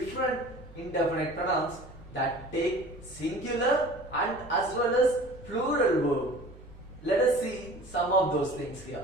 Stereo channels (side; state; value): right; noise; hum, 20 dB below the sound